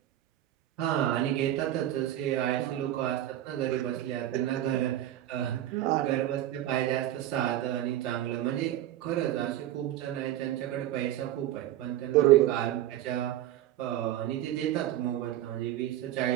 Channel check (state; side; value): quieter; left; 13.1 dB